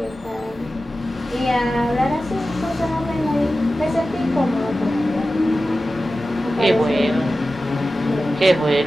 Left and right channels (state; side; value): normal; both; correlation 0.94